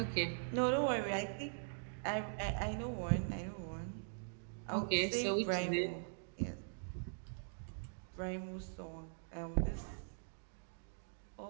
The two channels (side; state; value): left; silent; digital silence